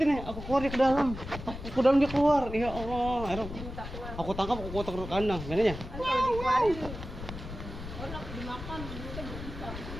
nih. Aku keluar dia ke dalam. Aku dalam dia keluar. Ya Allah. Akhirnya aku tangkap, aku kotak ke kandang. Gimana ya? Enak dimakan, kita bisa.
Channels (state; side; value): noise; left; rumble, 10 dB below the sound